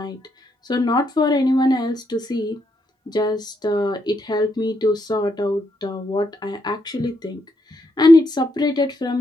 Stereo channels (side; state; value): both; normal; correlation 0.78